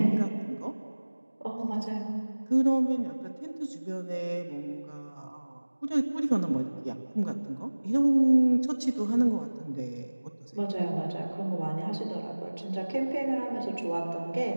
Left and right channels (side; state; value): both; inverted; correlation -1.00